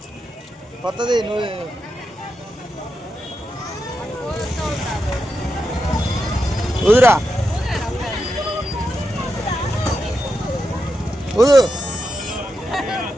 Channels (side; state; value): both; normal; correlation 0.87